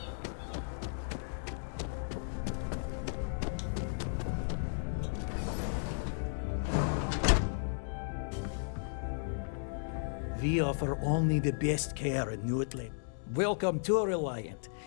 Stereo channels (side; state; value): right; silent; digital silence